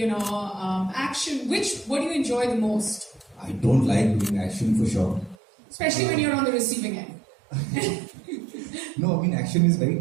action? What do you enjoy the most? I don't like doing action for sure. Especially when you're on the receiving end. No, I mean action is very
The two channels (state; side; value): drops out; left; at 5.4 s